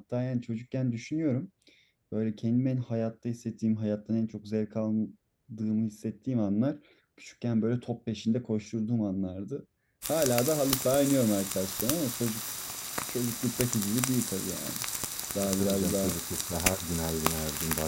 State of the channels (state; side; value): identical; both; correlation 1.00